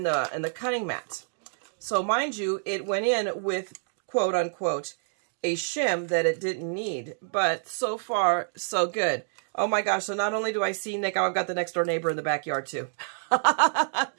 cutting mat. So mind you, it went in with quote unquote a shim that it didn't need, but so far so good. Oh my gosh, so not only do I see Nick, I've got the next door neighbor in the backyard too.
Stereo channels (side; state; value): left; silent; digital silence